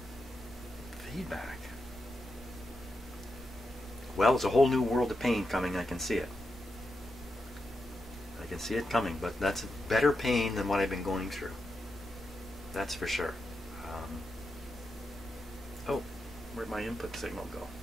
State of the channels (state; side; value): normal; both; correlation 0.87